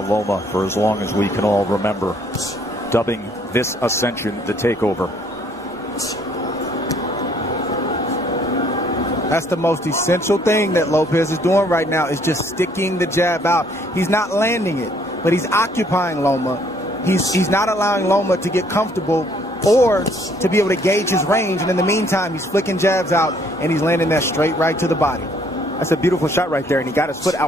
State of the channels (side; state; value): both; normal; correlation 0.64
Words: Loma for as long as we can all remember, dubbing this ascension the takeover. That's the most essential thing that Lopez is doing right now, is just sticking the jab out. He's not landing it, but he's occupying Loma. He's not allowing Loma to get comfortable or to be able to gauge his range. And in the meantime, he's flicking jabs out, and he's landing that straight right to the body. That's a beautiful shot right there, and he got his foot